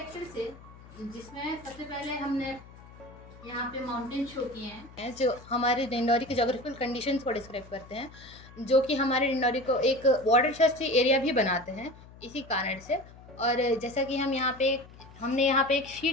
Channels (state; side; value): noise; left; hum, 20 dB below the sound